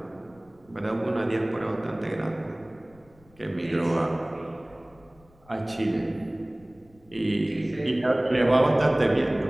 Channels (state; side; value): noise; left; rumble, 28 dB below the sound